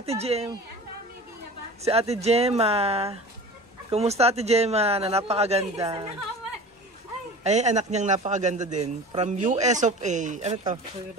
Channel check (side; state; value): both; normal; correlation 0.37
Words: Ate Gemma. Kumusta Ate Gemma na napakaganda? Ay, anak niyang napakaganda din. From US of A. Ano to?